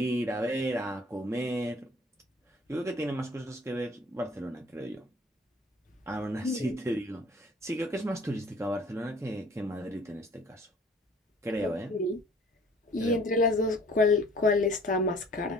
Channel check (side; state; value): both; normal; correlation 0.53